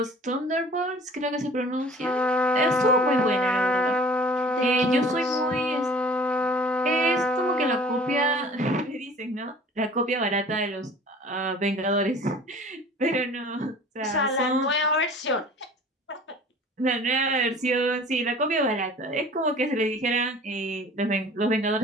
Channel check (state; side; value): normal; both; correlation 0.46